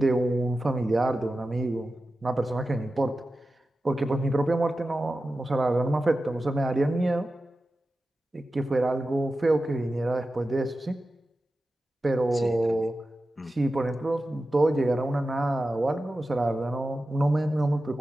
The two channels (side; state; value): both; normal; correlation 0.93